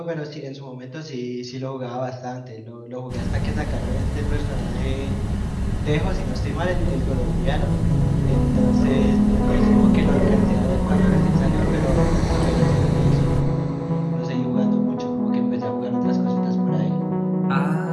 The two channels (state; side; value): identical; both; correlation 1.00